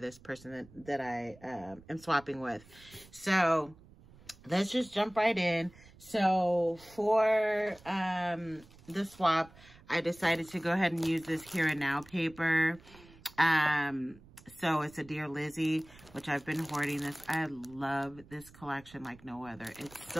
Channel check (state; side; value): noise; right; rumble, 23 dB below the sound